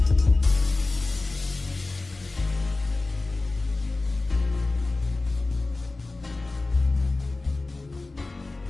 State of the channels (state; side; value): quieter; right; 3.3 dB